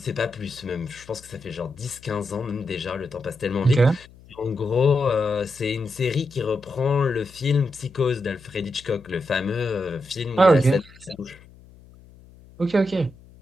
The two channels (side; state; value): left; noise; hum, 23 dB below the sound